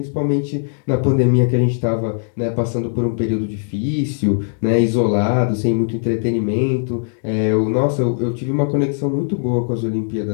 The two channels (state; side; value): silent; right; digital silence